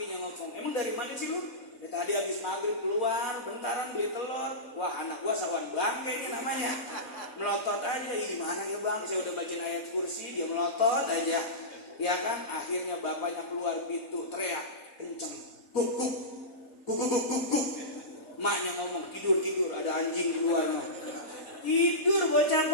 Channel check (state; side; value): late; right; 4.1 ms